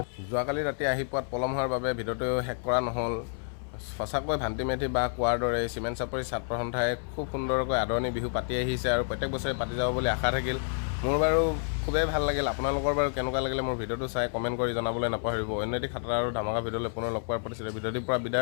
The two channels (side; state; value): right; silent; 58 dB below the other